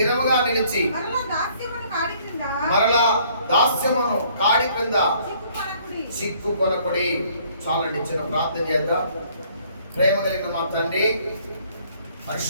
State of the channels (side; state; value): both; inverted; correlation -0.62